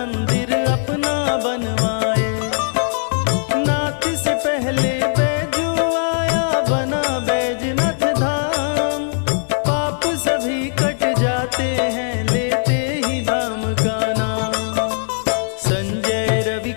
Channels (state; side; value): silent; right; digital silence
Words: अपना बनवाए। नाथ से पहले बैजू आया, बना बैजनाथ धाम। पाप सभी कट जाते हैं लेते ही धाम का नाम। संजय रवि